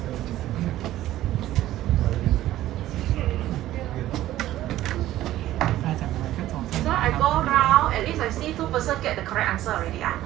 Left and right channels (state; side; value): quieter; left; 14.3 dB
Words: I go round, at least I see 2% get the correct answer already.